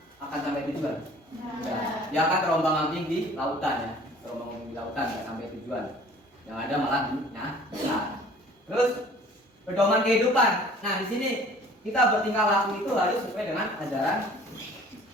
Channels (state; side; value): normal; both; correlation 0.50